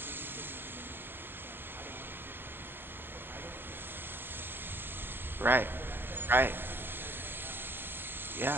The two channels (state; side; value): late; left; 0.098 ms